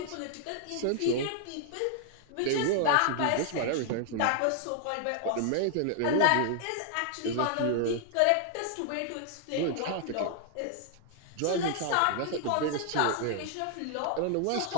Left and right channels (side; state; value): both; different; correlation 0.00